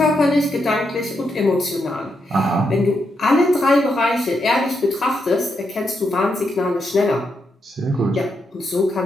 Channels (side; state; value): both; normal; correlation 0.82